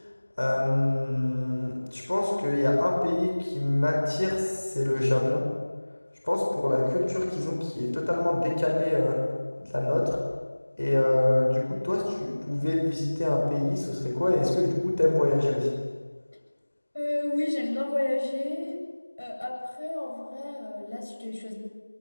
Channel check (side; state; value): both; inverted; correlation -1.00